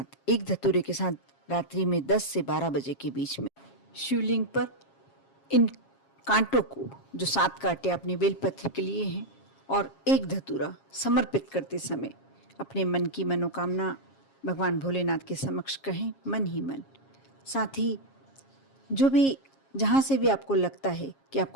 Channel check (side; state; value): right; late; 7.4 ms